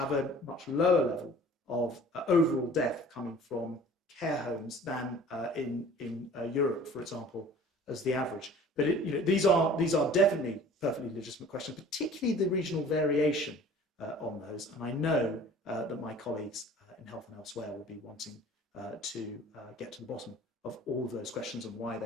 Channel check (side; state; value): both; normal; correlation 0.47